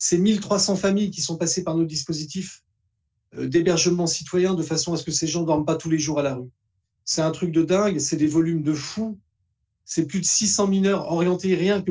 1300 familles qui sont passées par nos dispositifs d'hébergement citoyen de façon à ce que ces gens ne dorment pas tous les jours à la rue. C'est un truc de dingue, c'est des volumes de fous. C'est plus de 600 mineurs orientés rien que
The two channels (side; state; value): both; identical; correlation 1.00